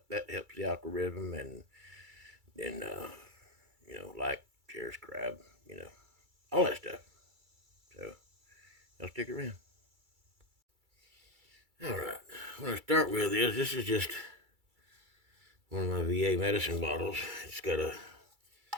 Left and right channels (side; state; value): left; late; 2.3 ms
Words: That helps the algorithm, and then like, share, subscribe, all that stuff. So y'all stick around. All right, what I'll start with is this is just one of my VA medicine bottles. It's got a